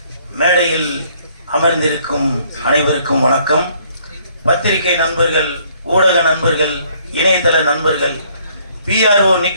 மேடையில் அமர்ந்திருக்கும் அனைவருக்கும் வணக்கம். பத்திரிகை நண்பர்கள், ஊடக நண்பர்கள், இணையதள நண்பர்கள், PRO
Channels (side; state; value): both; inverted; correlation -0.64